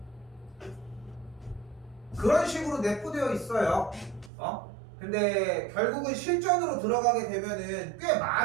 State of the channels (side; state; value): left; drops out; at 4.3 s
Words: 그런 식으로 내포되어 있어요. 근데 결국은 실전으로 들어가게 되면은 꽤